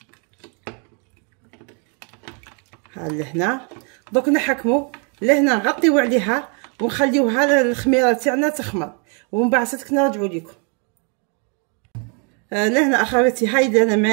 لهنا. دوك نحكموا لهنا نغطيو عليها ونخليوها الخميره تاعنا تخمر، ومن بعد صدق نرجعوا لكم. لهنا اخواتي هاي لهنا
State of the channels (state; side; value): quieter; left; 38.1 dB